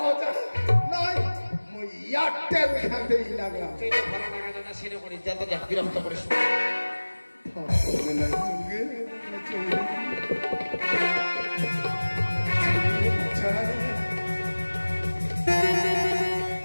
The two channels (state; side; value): inverted; both; correlation -1.00